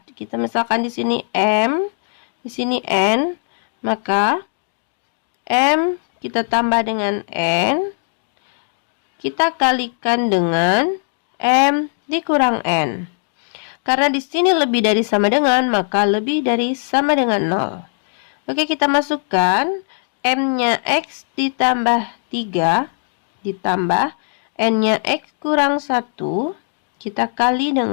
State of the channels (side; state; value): right; silent; digital silence